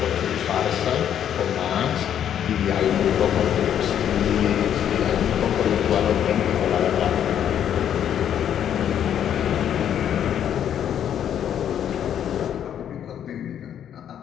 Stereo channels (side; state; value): right; quieter; 9.6 dB